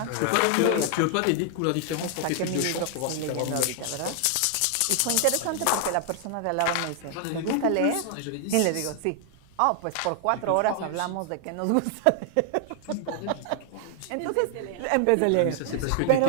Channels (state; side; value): different; both; correlation 0.00